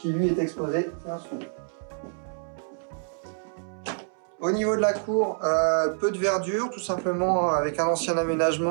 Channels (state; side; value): silent; left; 60 dB below the other